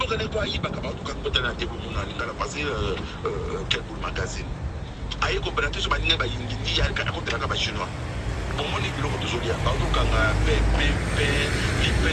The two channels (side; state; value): both; identical; correlation 1.00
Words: vous avez pas de na tebo mona ngala passer quel pour magazine. Aye ko brate so baninga ba yindi ya ka ko tera ka ba Chinois. Pour moi, les pilotes de Zolia, pardon, quand les